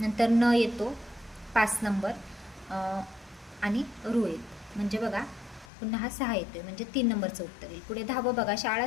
नंतर न येतो 5 नंबर, आणि रू येईल, म्हणजे बघा पुन्हा हा 6 येतोय, म्हणजे 3 नंबरचं उत्तर येईल. पुढे 10वं बघा, शाळा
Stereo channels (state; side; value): drops out; right; at 5.7 s